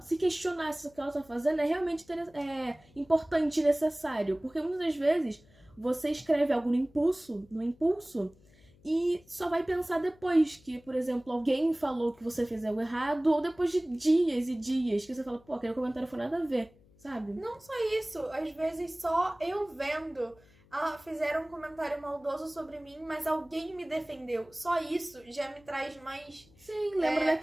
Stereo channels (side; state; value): left; noise; hum, 28 dB below the sound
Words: se questionar se o que ela tá fazendo é realmente importante e necessário. Porque muitas das vezes você escreve algo no impulso, e só vai pensar depois que, por exemplo, alguém falou que você fez algo errado, ou depois de dias e dias que você fala, pô, aquele comentário foi nada a ver, sabe? Não só isso, às vezes só eu vendo, fizeram um comentário maldoso sobre mim, mas alguém me defendeu. Só isso já me traz mais... Sim, lembra